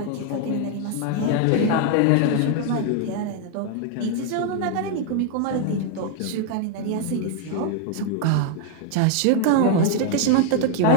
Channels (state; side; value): different; both; correlation 0.00